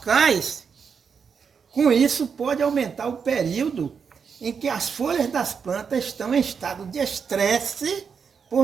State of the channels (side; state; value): left; quieter; 6.3 dB